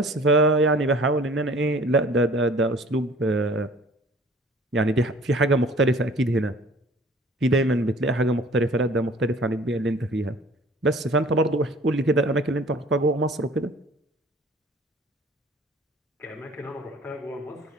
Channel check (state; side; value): normal; both; correlation 0.50